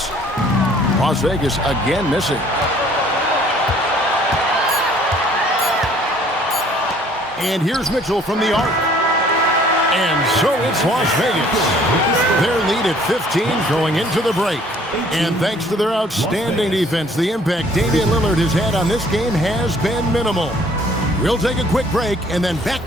Las Vegas again missing. And here's Mitchell from the arc. And so it's Las Vegas. Their lead at 15 going into the break. And thanks to their outstanding defense, the impact Damian Lillard has had on this game has been minimal. We'll take a quick break and then back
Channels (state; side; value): normal; both; correlation 0.57